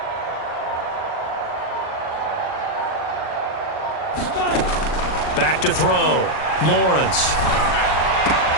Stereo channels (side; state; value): right; late; 39 ms